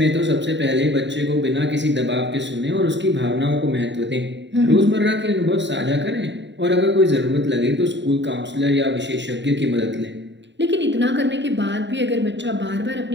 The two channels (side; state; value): left; late; 0.52 ms